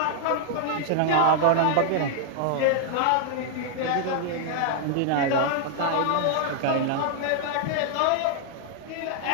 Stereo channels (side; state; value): both; different; correlation 0.00